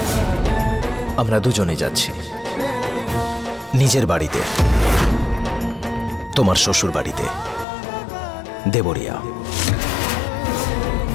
আমরা দুজনে যাচ্ছি। নিজের বাড়িতে, তোমার শ্বশুর বাড়িতে, দেবরিয়া।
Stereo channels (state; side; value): drops out; right; at 7.7 s